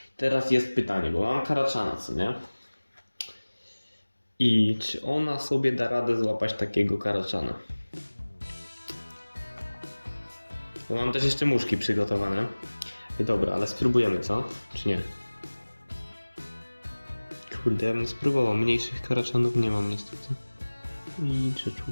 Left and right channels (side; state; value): both; inverted; correlation -1.00